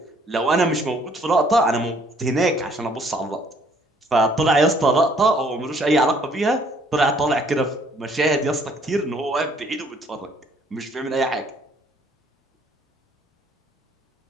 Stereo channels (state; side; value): normal; both; correlation 0.62